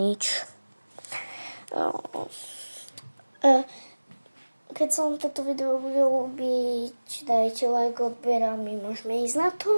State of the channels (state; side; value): inverted; both; correlation -1.00